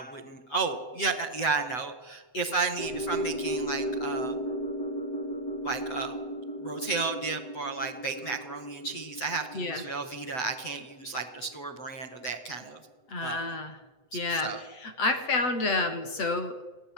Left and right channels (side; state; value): right; late; 7.9 ms